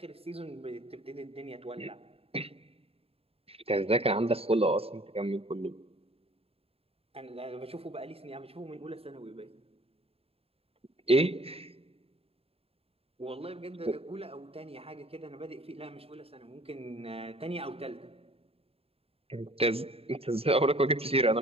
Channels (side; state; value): left; late; 0.28 ms